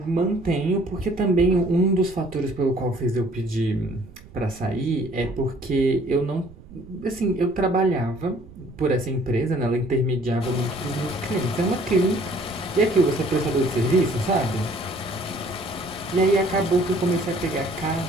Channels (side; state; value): right; noise; rumble, 20 dB below the sound